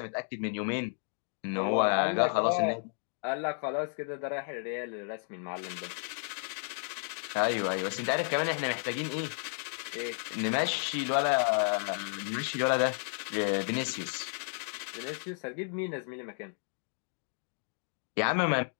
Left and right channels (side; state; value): right; silent; 56 dB below the other